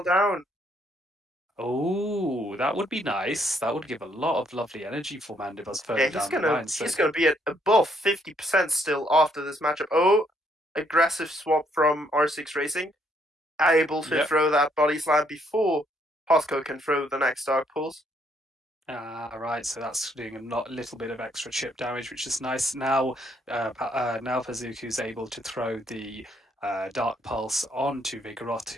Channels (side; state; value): both; normal; correlation 0.70